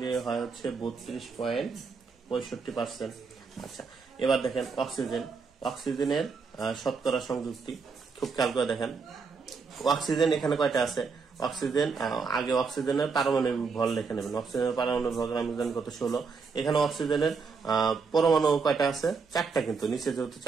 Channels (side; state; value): left; quieter; 5.0 dB